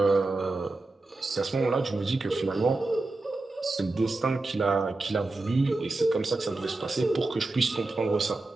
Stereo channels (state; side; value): quieter; left; 3.2 dB